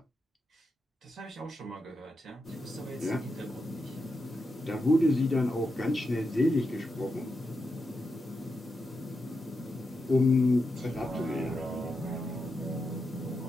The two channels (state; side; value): normal; both; correlation 0.87